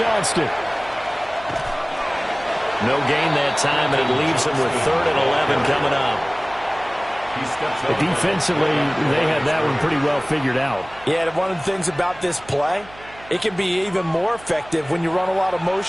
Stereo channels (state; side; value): noise; right; hum, 21 dB below the sound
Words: No gain that time, and it leaves him with 3rd and 11 coming up. Defensively, they had that one pretty well figured out. Yeah, and one of the things about this play, it can be even more effective when you run a lot of